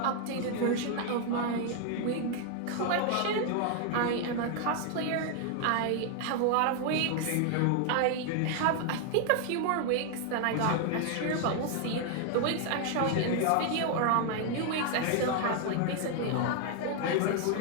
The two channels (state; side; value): different; both; correlation 0.00